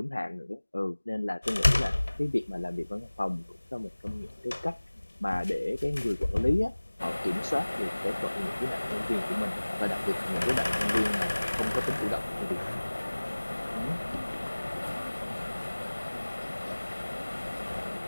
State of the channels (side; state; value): both; inverted; correlation -1.00